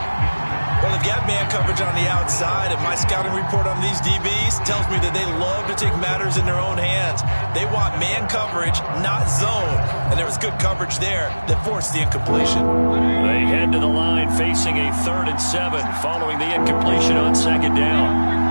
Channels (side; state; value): both; inverted; correlation -1.00